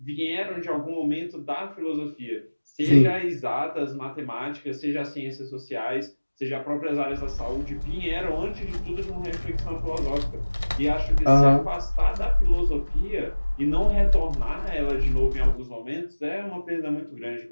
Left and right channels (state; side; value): inverted; both; correlation -1.00